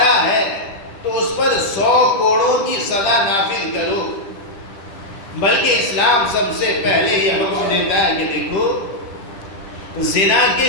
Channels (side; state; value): right; late; 10 ms